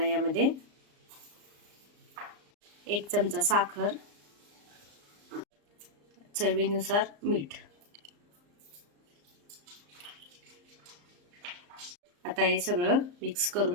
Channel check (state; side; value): late; left; 34 ms